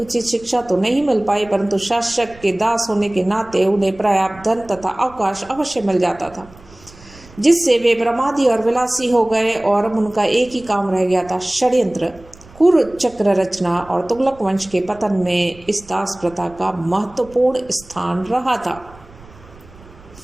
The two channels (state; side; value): noise; right; rumble, 23 dB below the sound